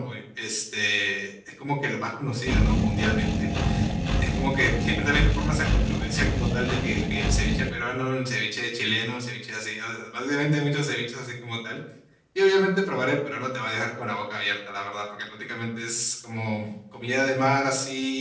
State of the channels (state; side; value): identical; both; correlation 1.00